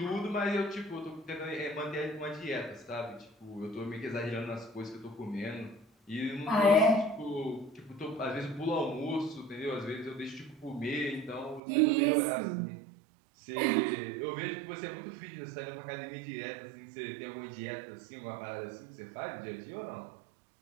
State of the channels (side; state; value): left; drops out; at 11.6 s